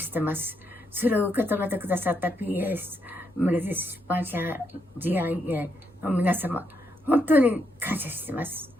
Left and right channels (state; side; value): normal; both; correlation 0.78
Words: てます。それを受け止めてくださった PS、メレディス出版社 GIA の皆様、本当に感謝してます。